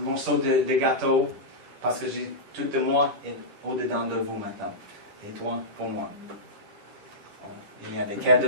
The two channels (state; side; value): late; left; 10 ms